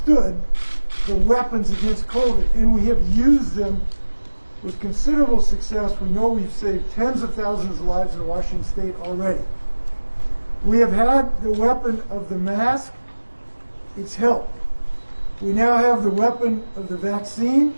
the weapons against COVID, and we have used them with considerable success. We know we've saved tens of thousands of lives in Washington state already. We have had the weapon of the mask. It's helped. We now have the weapon of the vaccine.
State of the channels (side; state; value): both; inverted; correlation -1.00